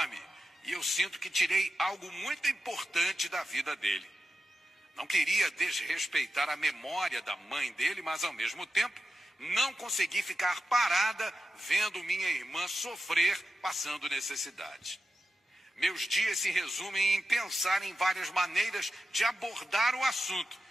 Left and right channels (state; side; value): normal; both; correlation 0.92